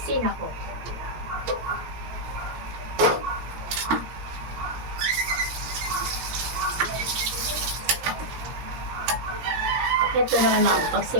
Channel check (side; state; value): left; late; 17 ms